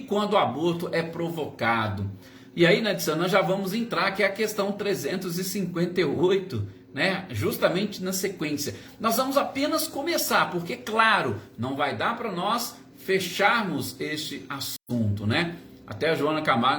o aborto é provocado? E aí, Nadisan, nós já vamos entrar, que é a questão 358, né? Justamente na sequência. Nós vamos apenas começar, porque, claro, não vai dar para nós fecharmos este assunto, né? Até a Joana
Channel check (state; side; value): identical; both; correlation 1.00